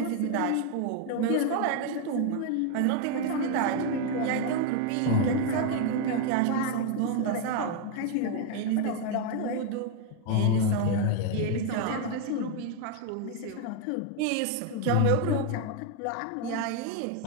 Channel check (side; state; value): both; different; correlation 0.01